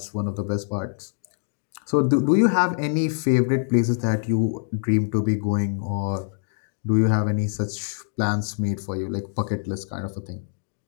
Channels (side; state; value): right; silent; 62 dB below the other